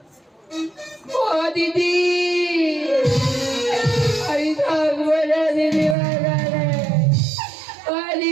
ও দিদি আমি থাকবো না দিদি বাজারে, ও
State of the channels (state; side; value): drops out; left; at 6.0 s